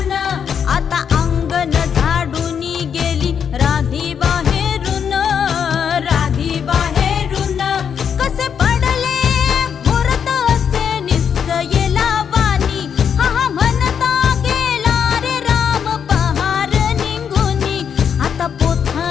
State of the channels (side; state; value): right; quieter; 7.6 dB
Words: आता अंगण झाडून गेली राधी बाहेरून, राधी बाहेरून कसे पडले मुहूर्त असे निश्चयेला वाणी, हा हा म्हणता गेला रे राम पहार निघूनी, आता